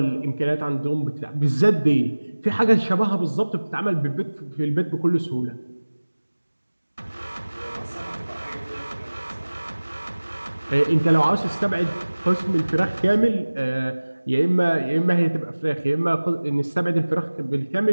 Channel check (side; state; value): both; inverted; correlation -1.00